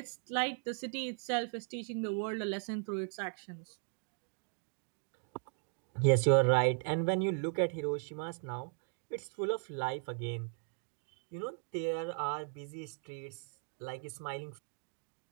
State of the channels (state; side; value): silent; left; 53 dB below the other